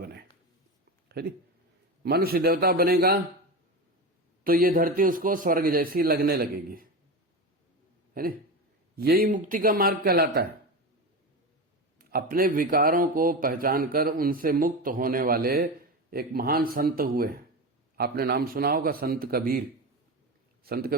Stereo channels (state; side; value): normal; both; correlation 0.22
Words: है नी? मनुष्य देवता बनेगा तो ये धरती उसको स्वर्ग जैसी लगने लगेगी, है नी? यही मुक्ति का मार्ग कहलाता है। अपने विकारों को पहचान कर उनसे मुक्त होने वाले एक महान संत हुए। आपने नाम सुना होगा संत कबीर। संत